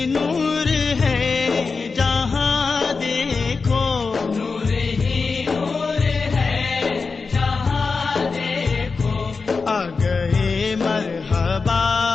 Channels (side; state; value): right; quieter; 4.5 dB